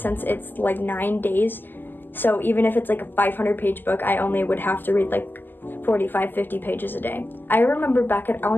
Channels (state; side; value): late; right; 0.092 ms